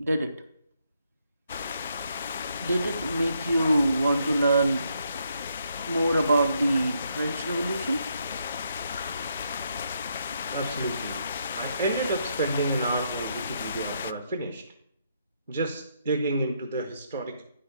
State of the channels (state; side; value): inverted; both; correlation -0.76